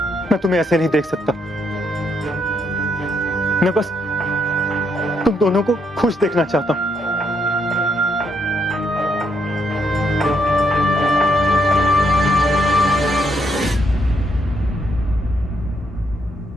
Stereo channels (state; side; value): normal; both; correlation 0.75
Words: मैं तुम्हें ऐसे नहीं देख सकता। मैं बस तुम दोनों को खुश देखना चाहता हूं।